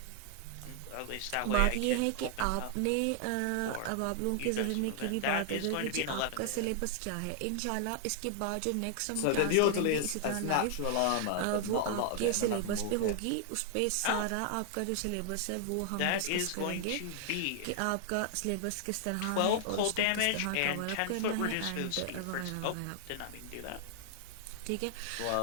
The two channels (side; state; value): both; different; correlation 0.00